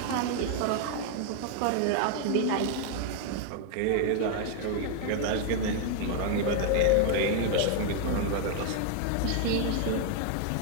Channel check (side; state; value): both; different; correlation 0.00